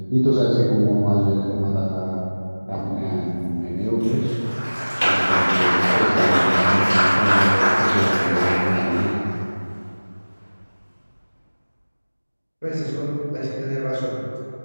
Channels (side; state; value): both; inverted; correlation -1.00